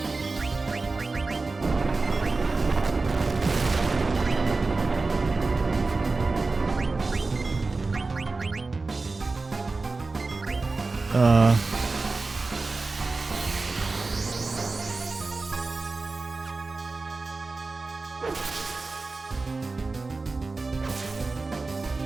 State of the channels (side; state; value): left; quieter; 3.7 dB